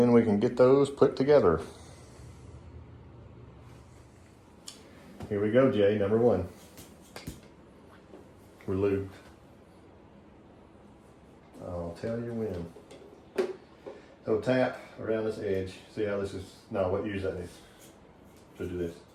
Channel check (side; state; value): both; identical; correlation 1.00